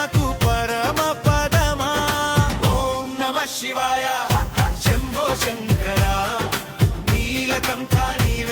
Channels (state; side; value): identical; both; correlation 1.00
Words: పరమ పదమా ఓం నమః శివాయ శంభో శంకర నీలకంఠ